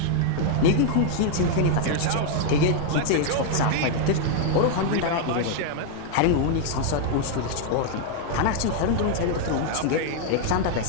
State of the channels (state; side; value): different; both; correlation 0.00